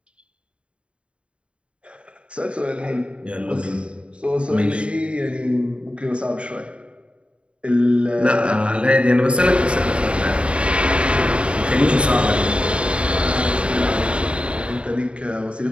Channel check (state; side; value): late; left; 0.058 ms